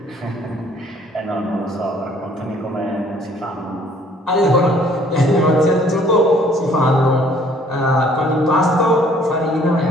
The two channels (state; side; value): normal; both; correlation 0.59